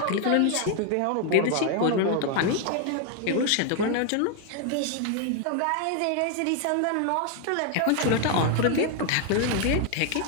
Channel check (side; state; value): both; different; correlation 0.00